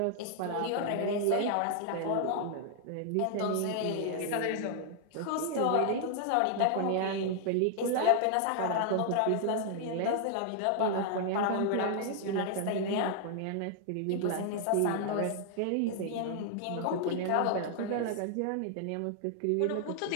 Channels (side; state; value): both; different; correlation 0.00